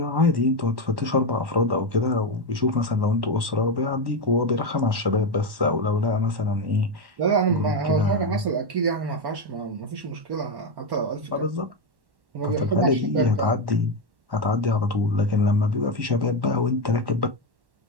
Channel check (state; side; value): late; left; 1.1 ms